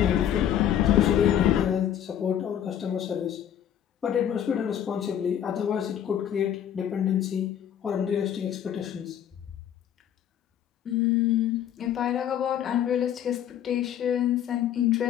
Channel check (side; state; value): right; quieter; 10.0 dB